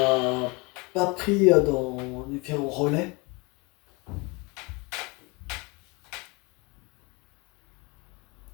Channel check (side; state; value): right; quieter; 27.7 dB